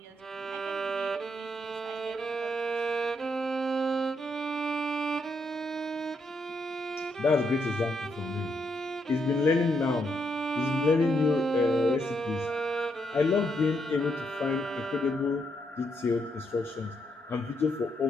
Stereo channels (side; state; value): both; normal; correlation 0.78